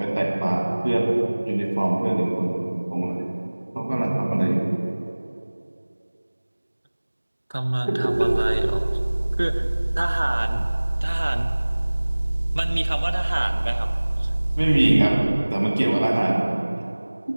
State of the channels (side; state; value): both; inverted; correlation -1.00